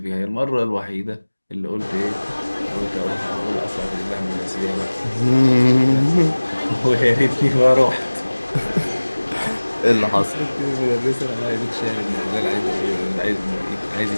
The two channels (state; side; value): inverted; both; correlation -1.00